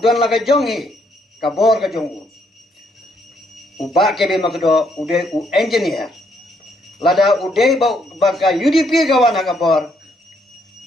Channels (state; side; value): normal; both; correlation 0.72